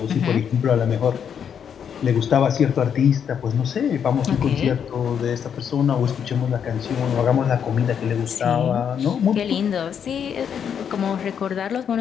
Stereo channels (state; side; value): quieter; right; 7.9 dB